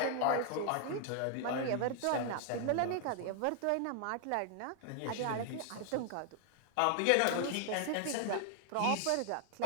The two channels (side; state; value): both; different; correlation 0.00